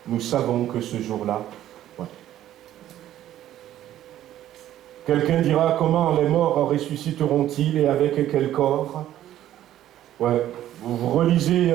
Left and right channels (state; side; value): quieter; left; 12.5 dB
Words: nous savons que ce jour-là, ouais. Quelqu'un dira, comment les morts ressusciteront-ils et avec quel corps? Ouais. Vous relisez